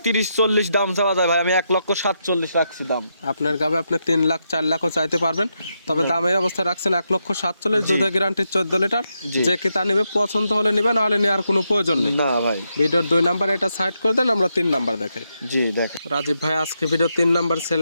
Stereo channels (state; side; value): inverted; both; correlation -0.82